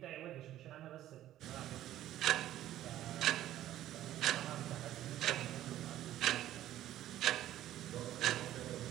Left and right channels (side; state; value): left; quieter; 13.2 dB